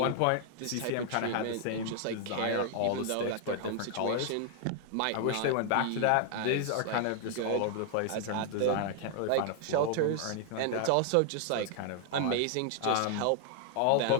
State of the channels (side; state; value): both; different; correlation 0.00